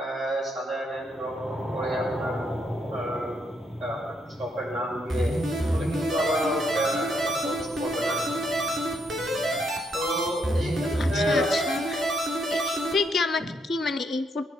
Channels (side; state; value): both; normal; correlation 0.75